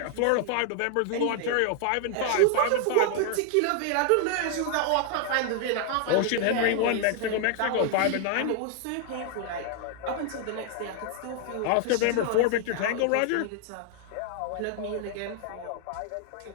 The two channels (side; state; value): both; different; correlation 0.00